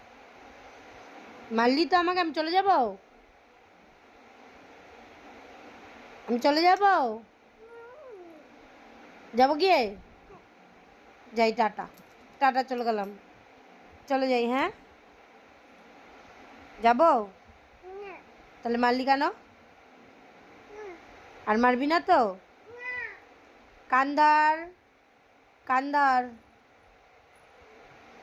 মারলি তো আমাকে, আমি চলে যাব? আমি চলে যাব? যাব গিয়ে? যাই, টাটা। টাটা, চলে গেলাম। চলে যাই, হ্যাঁ? যাব? তাহলে মারলি কেন? আর মারবি না তো? কান্দার, কান্দার,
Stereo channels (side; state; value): both; identical; correlation 1.00